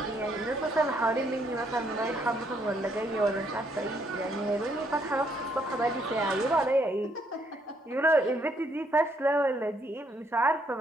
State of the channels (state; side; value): normal; both; correlation 0.71